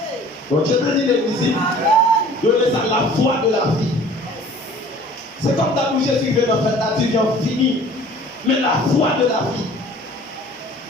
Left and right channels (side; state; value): both; normal; correlation 0.49